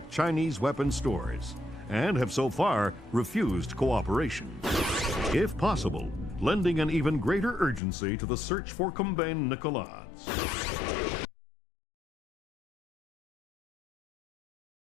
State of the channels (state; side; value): drops out; right; at 7.8 s